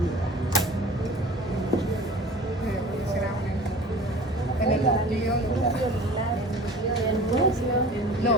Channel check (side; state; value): both; normal; correlation 0.41